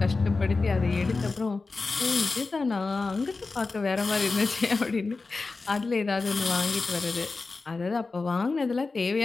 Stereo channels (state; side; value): quieter; right; 3.9 dB